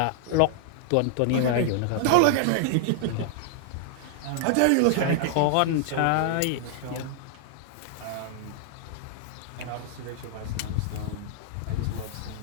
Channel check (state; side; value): different; both; correlation -0.01